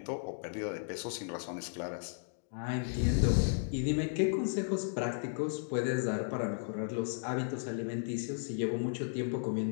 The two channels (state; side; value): silent; right; digital silence